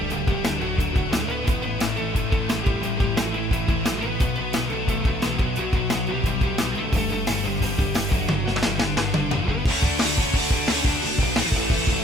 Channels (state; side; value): normal; both; correlation 0.65